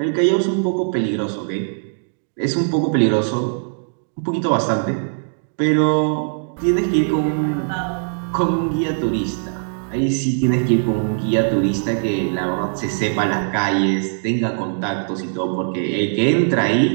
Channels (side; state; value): left; silent; digital silence